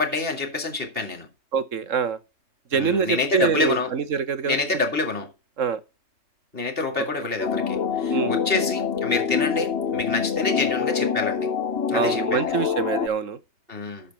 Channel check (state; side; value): late; left; 2.7 ms